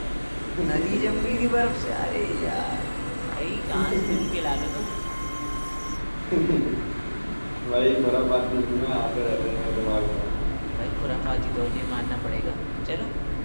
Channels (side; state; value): both; inverted; correlation -1.00